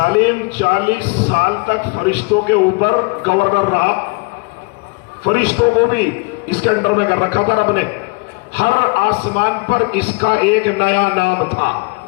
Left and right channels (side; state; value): right; quieter; 30.1 dB